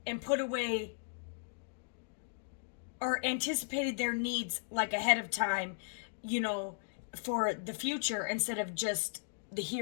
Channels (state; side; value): silent; right; digital silence